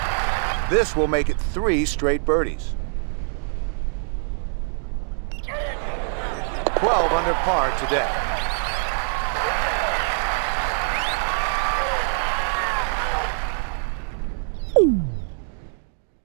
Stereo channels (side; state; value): left; silent; digital silence